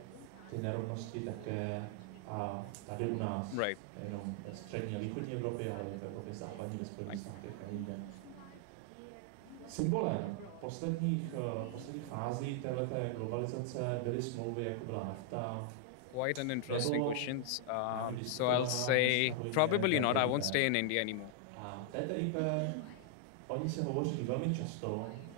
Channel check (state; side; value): different; both; correlation 0.00